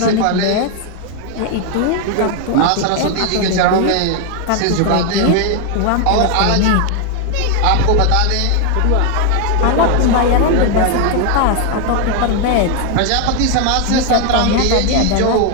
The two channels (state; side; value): different; both; correlation 0.01